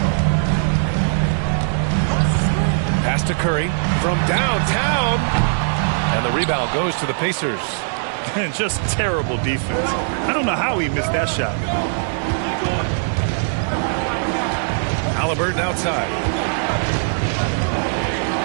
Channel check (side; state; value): left; silent; digital silence